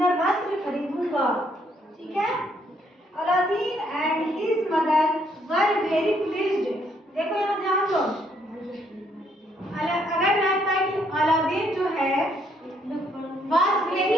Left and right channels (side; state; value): both; normal; correlation 0.70